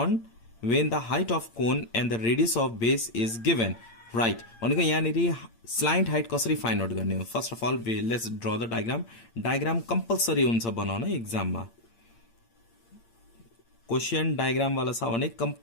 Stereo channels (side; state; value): right; late; 8.7 ms